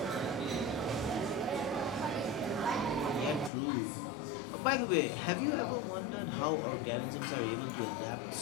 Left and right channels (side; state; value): right; drops out; at 3.5 s